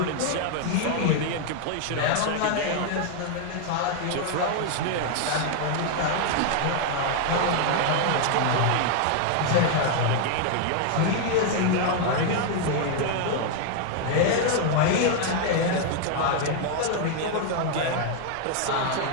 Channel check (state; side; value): different; both; correlation 0.00